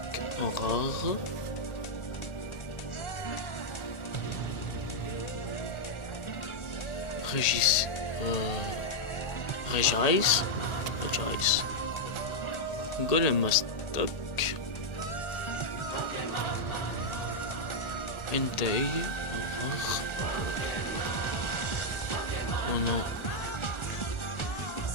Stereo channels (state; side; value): late; right; 1.4 ms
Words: en rare. Regice. Golem Aztèque. Entei. Oh non.